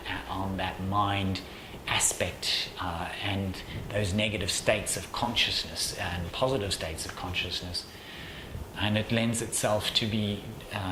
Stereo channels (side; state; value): both; identical; correlation 1.00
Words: mind aspect and those negative states of consciousness and positive states of consciousness, and it lends itself to be